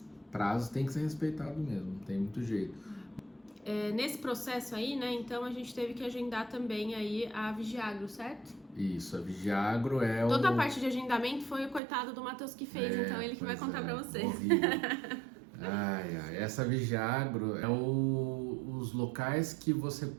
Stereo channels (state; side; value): drops out; left; at 11.8 s